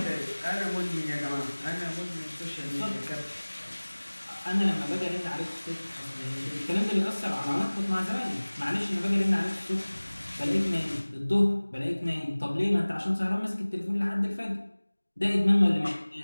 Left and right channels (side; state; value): both; inverted; correlation -1.00